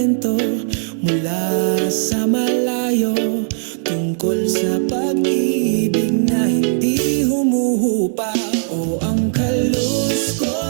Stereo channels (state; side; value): silent; left; digital silence